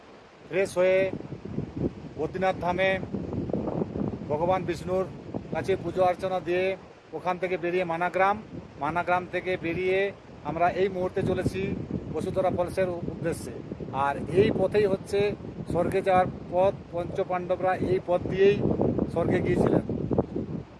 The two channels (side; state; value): both; identical; correlation 1.00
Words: ফ্রেশ হয়ে বদ্রীনাথ ধামে ভগবান বিষ্ণুর কাছে পুজো অর্চনা দিয়ে ওখান থেকে বেরিয়ে মানাগ্রাম থেকে বেরিয়ে আমরা এই মুহূর্তে চলেছি বসুধারা ফলসের উদ্দেশ্যে। আর এই পথেই হচ্ছে স্বর্গে যাওয়ার পথ। পঞ্চপাণ্ডবরা এই পথ দিয়েই স্বর্গে গিয়েছিলেন।